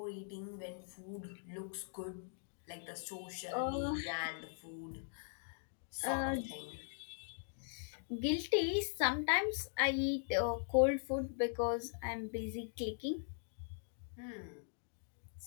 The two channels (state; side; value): silent; right; digital silence